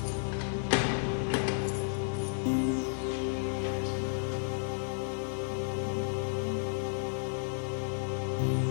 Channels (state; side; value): silent; right; digital silence